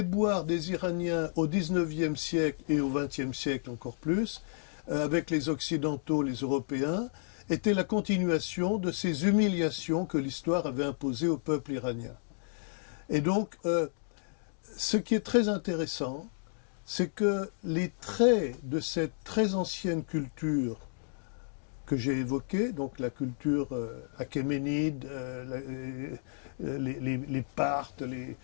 des Iraniens au XIXe siècle et au XXe siècle encore plus, avec les Occidentaux, les Européens, étaient la continuation de ces humiliations que l'histoire avait imposées au peuple iranien. Et donc, ce qui est très intéressant, c'est que les traits de cette très ancienne culture que j'ai évoquée, donc la culture achéménide, les Parthes,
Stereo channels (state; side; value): silent; right; digital silence